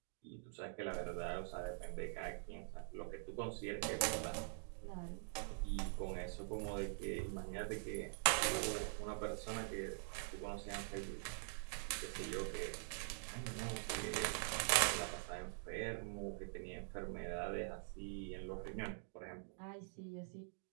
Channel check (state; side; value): silent; left; digital silence